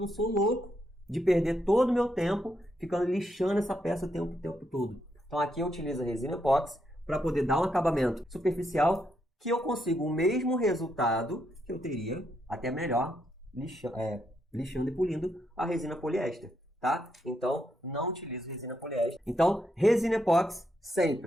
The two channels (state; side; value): normal; both; correlation 0.79